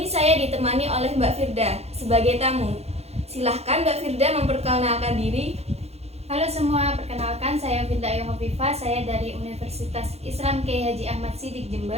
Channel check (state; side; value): late; left; 0.30 ms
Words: saya ditemani oleh Mbak Firda sebagai tamu. Silahkan Mbak Firda memperkenalkan diri. Halo semua, perkenalkan saya Firda Yohovifa, saya dari Universitas Islam Kiai Haji Ahmad Siddiq